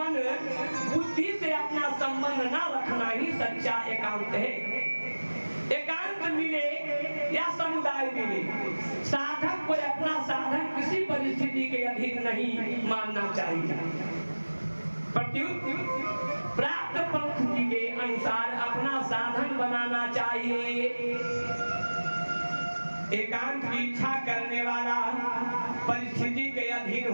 बुद्धि से अपना संबंध न रखना ही सच्चा एकांत है। एकांत मिले या समुदाय मिले, साधक को अपना साधन किसी परिस्थिति के अधीन नहीं मानना चाहिए। प्रत्युत प्राप्त परिस्थिति के अनुसार अपना साधन बनाना चाहिए। एकांत की इच्छा करने वाला परिस्थिति के अधीन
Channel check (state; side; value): inverted; both; correlation -1.00